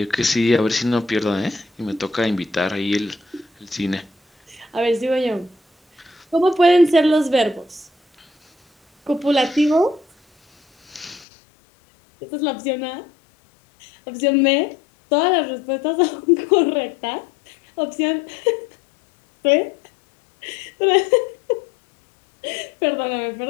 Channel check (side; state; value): right; drops out; at 11.2 s